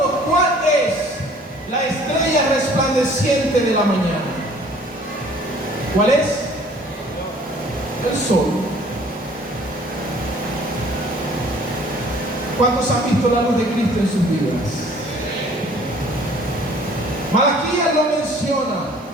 ¿cuál es la estrella resplandeciente de la mañana. ¿Cuál es? El sol. ¿Cuántos han visto la luz de Cristo en sus vidas? Malaquías lo menciona.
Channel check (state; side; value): normal; both; correlation 0.54